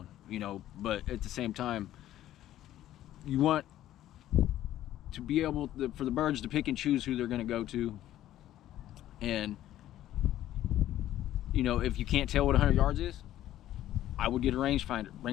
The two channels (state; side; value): quieter; right; 13.1 dB